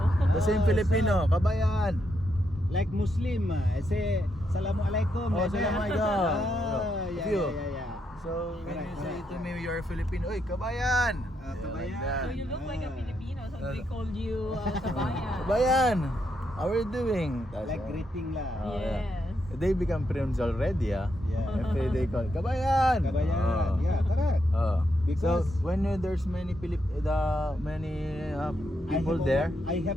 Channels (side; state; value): both; normal; correlation 0.80